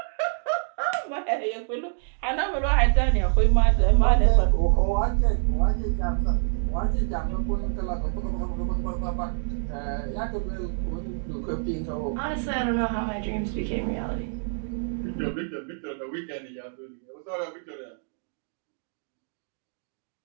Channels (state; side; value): silent; left; digital silence